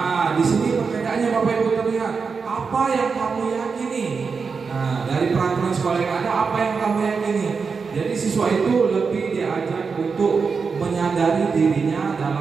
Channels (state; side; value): quieter; left; 5.2 dB